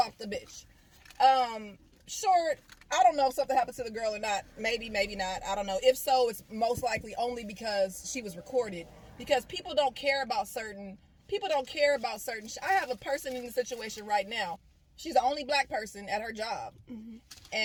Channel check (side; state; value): both; identical; correlation 1.00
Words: the bitch. Short, I don't know if something happened to the girl or not. Maybe, maybe not. I don't know. If so, it's most likely only because she was recorded. Because people don't care about certain. I have a person in the situation right now. She's the only black person at her job,